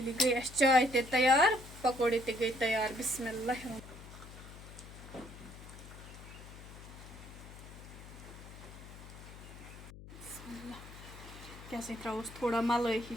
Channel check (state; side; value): noise; left; hum, 15 dB below the sound